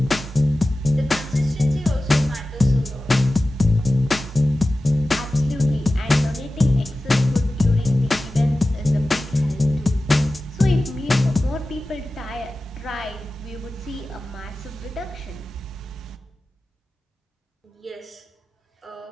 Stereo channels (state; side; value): normal; both; correlation 0.95